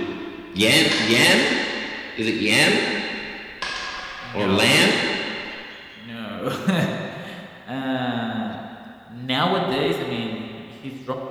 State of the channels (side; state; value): both; identical; correlation 1.00